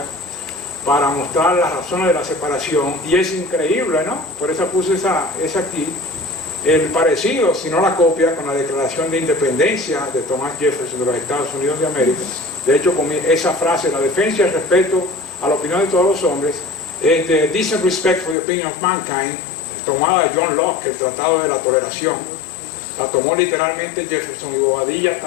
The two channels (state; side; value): drops out; right; at 18.4 s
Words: para mostrar las razones de la separación, y es increíble, ¿no? Por eso puse esa aquí, el parecido, si no la copia, con la Declaración de Independencia de Thomas Jefferson de los Estados Unidos de América. De hecho, con esa frase, la defensa y el respeto a la opinión de todos los hombres, es the decent respect for the opinion of mankind, tomada de John Locke, el Tratado de la Toleración. La tomó literalmente Jefferson, y Bobadilla